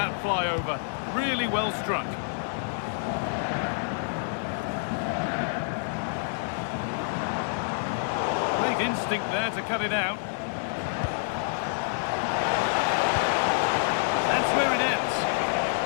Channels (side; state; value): right; silent; digital silence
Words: fly over. Really well struck. Great instinct there to cut it out. That's where it ends.